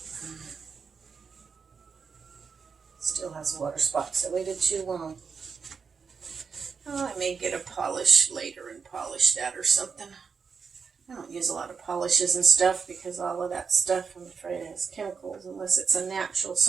Still has water spots. I waited too long. Oh, I may get a polish later and polish that or something. I don't use a lot of polishes and stuff because all of that stuff, I'm afraid, has chemicals, unless it's a natural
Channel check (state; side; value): quieter; left; 5.7 dB